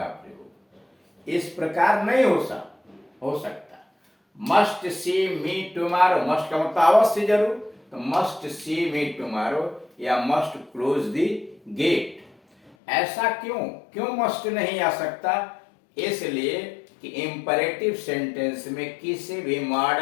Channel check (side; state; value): right; drops out; at 12.8 s